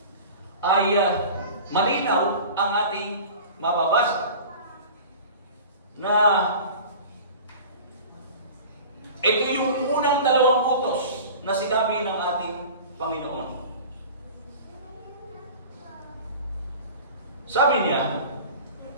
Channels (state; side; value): inverted; both; correlation -0.38